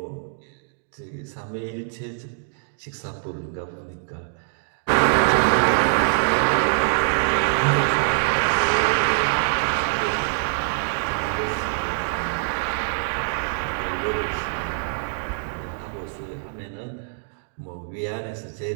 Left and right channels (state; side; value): silent; left; digital silence